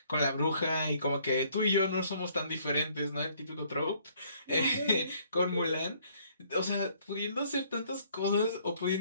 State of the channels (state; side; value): inverted; both; correlation -0.63